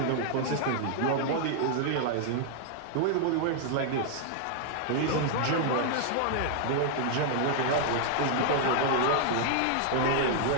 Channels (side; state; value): both; different; correlation -0.01